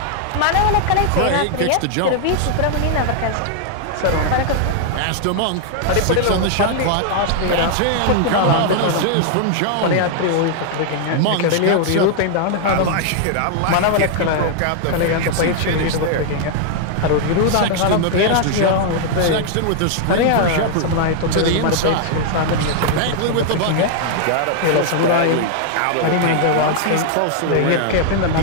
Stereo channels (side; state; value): both; different; correlation 0.00